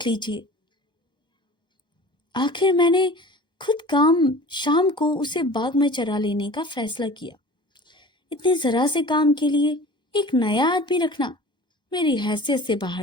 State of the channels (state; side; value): late; right; 1.1 ms